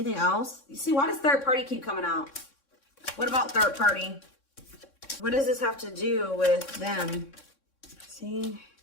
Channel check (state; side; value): late; right; 3.6 ms